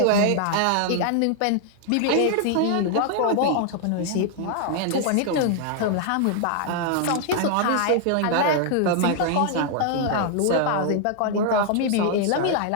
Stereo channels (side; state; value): both; different; correlation 0.00